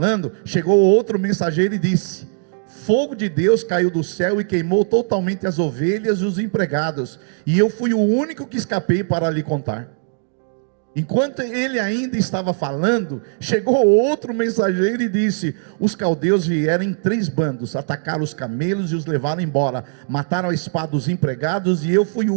chegou outro mensageiro e disse: fogo de Deus caiu do céu e queimou totalmente as ovelhas e os empregados, e eu fui o único que escapei para lhe contar. Enquanto ele ainda estava falando, chegou outro mensageiro e disse: os caldeus vieram em 3 bandos, atacaram os camelos e os levaram embora, mataram a espada os empregados, e eu fui o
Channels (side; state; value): left; silent; digital silence